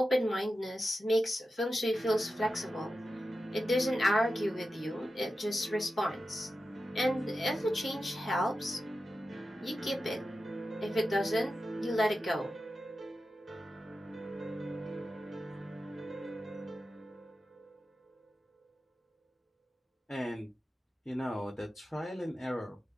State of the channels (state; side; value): normal; both; correlation 0.92